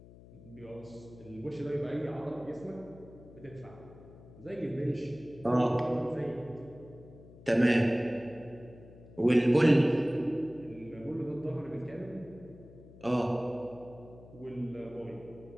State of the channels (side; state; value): left; noise; hum, 20 dB below the sound